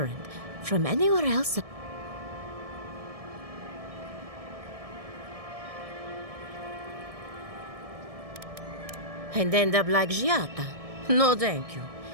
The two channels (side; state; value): left; late; 1.7 ms